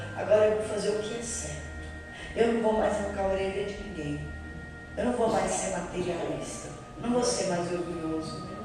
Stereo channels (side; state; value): both; identical; correlation 1.00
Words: Agora eu vou fazer o que é certo. Eu não vou mais arrancar a orelha de ninguém. Eu não vou mais ser materialista. Não vou ser mais orgulhoso.